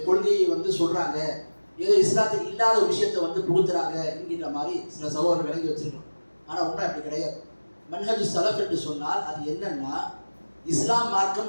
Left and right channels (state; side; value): inverted; both; correlation -1.00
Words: கொள்கையை சொல்றாங்க, ஏதோ இஸ்லாத்தில் இல்லாத ஒரு விஷயத்தை புகுத்துறாங்க என்கின்ற மாதிரி சில சகோதரர்கள் விளங்கி வச்சிருக்கோம். ஆனால் உண்மை அப்படி கிடையாது. மன்ஹஜ் ஸலஃப் என்று சொன்னால் அது என்னன்னா, இஸ்லாம்